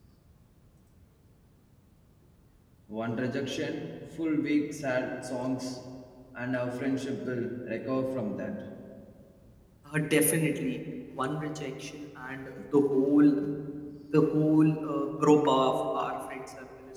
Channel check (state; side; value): identical; both; correlation 1.00